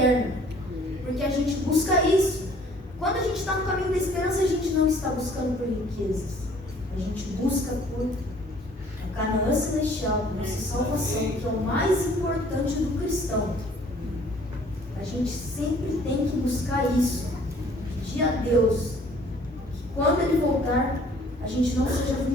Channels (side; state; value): both; normal; correlation 0.56